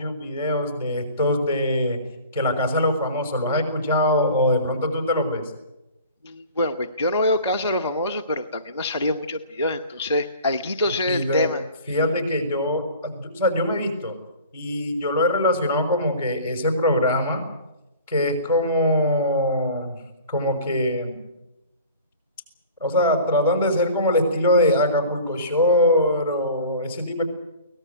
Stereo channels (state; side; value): inverted; both; correlation -0.43